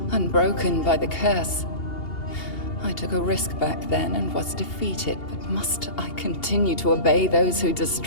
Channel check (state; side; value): late; right; 2.8 ms